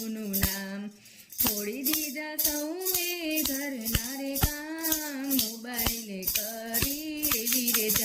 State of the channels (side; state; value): both; identical; correlation 1.00